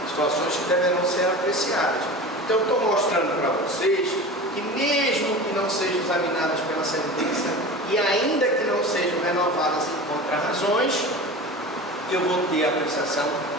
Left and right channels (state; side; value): normal; both; correlation 0.33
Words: situações que deverão ser apreciadas. Então, estou mostrando para vocês que mesmo que não sejam examinadas pela sentença e ainda que não sejam renovadas em contrarrazões, eu vou ter a apreciação